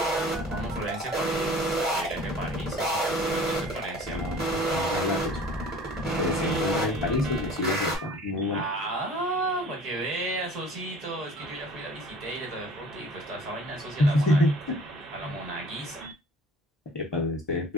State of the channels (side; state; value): both; normal; correlation 0.47